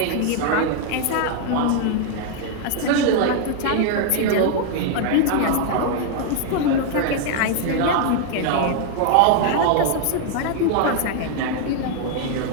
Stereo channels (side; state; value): both; different; correlation 0.00